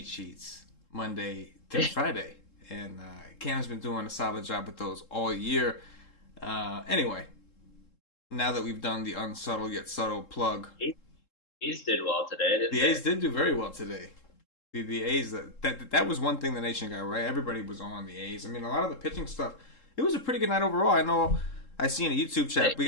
sheets Monday through Friday, and Cam's been doing a solid job with those all year. Anyway, now that we've done the unsubtle yet subtle plug, A's did well today, didn't they? The A's did do very well today. The A's, that was one thing the nation got right. Everybody was on the A's. I mean, a lot of the pitching stuff, it was a pretty good night overall. I know I see in a YouTube chat, we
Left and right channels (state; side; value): late; right; 3.7 ms